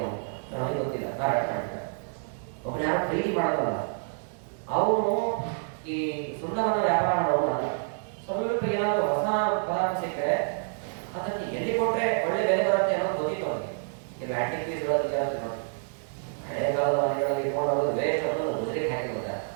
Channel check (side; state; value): left; silent; digital silence